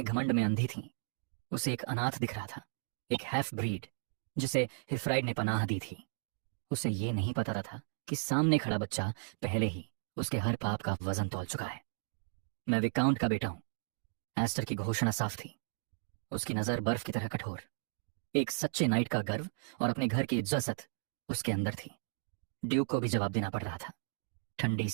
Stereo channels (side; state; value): left; silent; digital silence